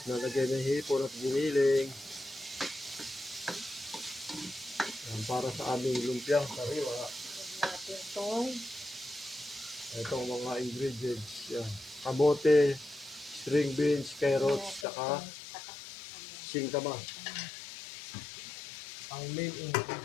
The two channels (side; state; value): right; drops out; at 14.9 s